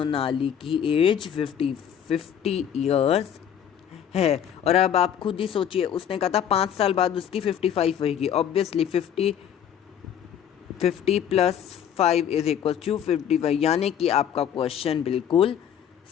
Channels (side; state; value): right; quieter; 9.1 dB